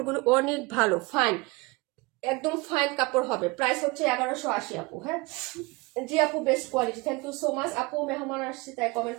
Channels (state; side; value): quieter; left; 24.8 dB